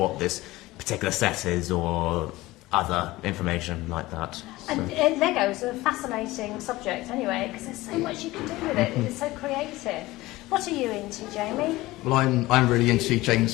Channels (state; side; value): quieter; right; 18.8 dB